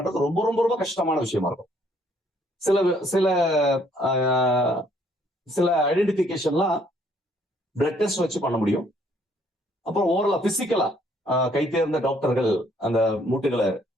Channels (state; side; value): normal; both; correlation 0.65